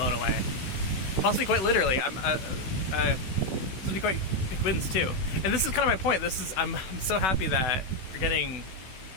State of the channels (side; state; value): right; late; 16 ms